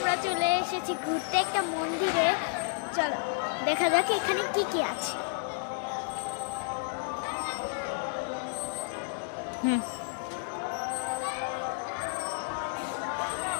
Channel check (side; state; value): right; silent; 57 dB below the other